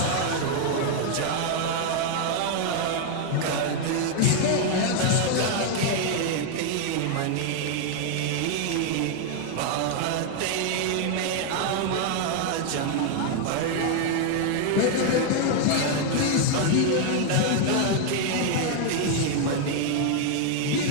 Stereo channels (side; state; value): both; different; correlation 0.00